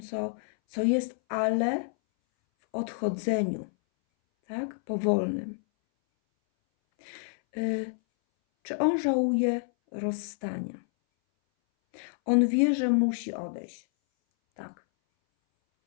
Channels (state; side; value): silent; right; 59 dB below the other